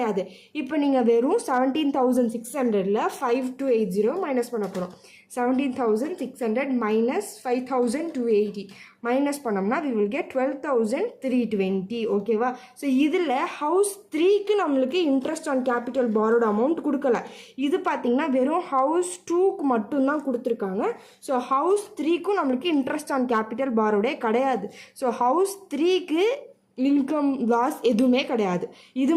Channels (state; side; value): identical; both; correlation 1.00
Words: இப்போ நீங்கள் வெறும் 17,600ல் 5,280 மைனஸ் பண்ண போகிறோம். 17,600 minus 5,280 மைனஸ் பண்ணோம்னா we will get 12,320. ஓகேவா? ஸோ இதில் ஹவுஸ் 3க்கு நம்மளுக்கு இன்ட்ரெஸ்ட் ஆன் கேபிட்டல் பாரோட அமௌண்ட் கொடுக்கல. இது பார்த்தீங்கன்னா வெறும் ஹவுஸ் 2க்கு மட்டும்தான் கொடுத்துருக்காங்க. ஸோ ஹவுஸ் 3க்கும் நம்மளுக்கு இன்ட்ரெஸ்ட் ஆன் கேபிட்டல் பாரோடே கிடையாது. ஸோ ஹவுஸ் 3க்கு இன்கம் லாஸ் எதுவுமே கிடையாது. இது